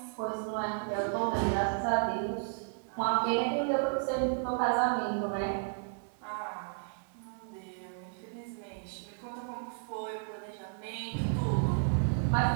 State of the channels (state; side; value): silent; left; digital silence